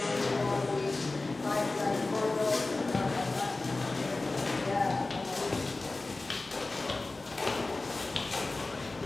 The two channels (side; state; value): right; quieter; 3.2 dB